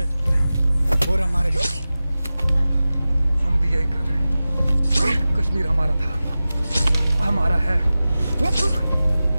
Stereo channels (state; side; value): inverted; both; correlation -0.95